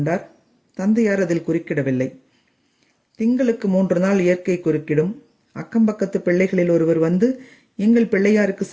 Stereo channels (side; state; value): both; identical; correlation 1.00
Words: தந்தையார் அதில் குறுக்கிடவில்லை. திங்களுக்கு 3 நாள் இயற்கை குறுக்கிடும். அக்கம்பக்கத்து பிள்ளைகளில் ஒருவர் வந்து எங்கள் பிள்ளையாருக்கு